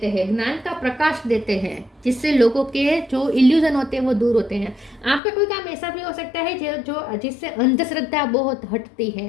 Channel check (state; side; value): drops out; right; at 5.2 s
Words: हैं, ज्ञान का प्रकाश देते हैं, जिससे लोगों के जो इल्यूजन होते हैं वो दूर होते हैं। आपका कोई काम ऐसा भी हो सकता है जो जिससे अंधश्रद्धा बहुत हटती